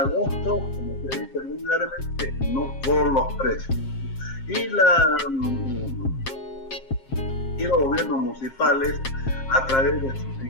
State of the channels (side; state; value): right; late; 7.5 ms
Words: como se dice vulgarmente, no por los precios. Y los gobiernos municipales, a través de sus